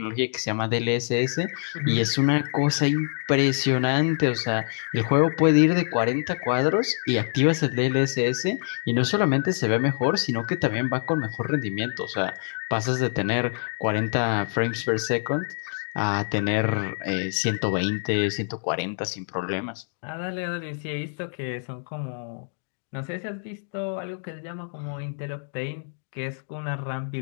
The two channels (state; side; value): silent; right; digital silence